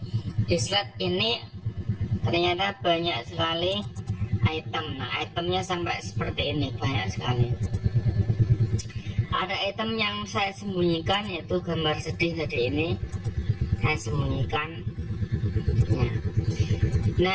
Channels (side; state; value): both; identical; correlation 1.00